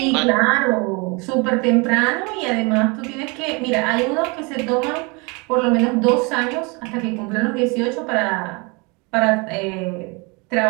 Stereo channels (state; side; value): quieter; left; 29.3 dB